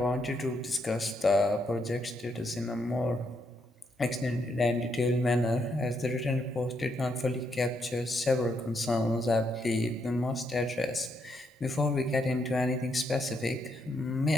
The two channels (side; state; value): both; normal; correlation 0.77